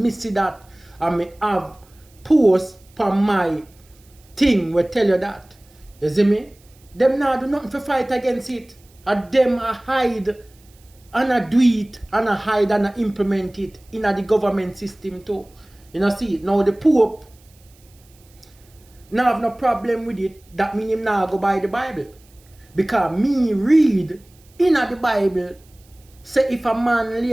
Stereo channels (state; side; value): noise; right; hiss, 30 dB below the sound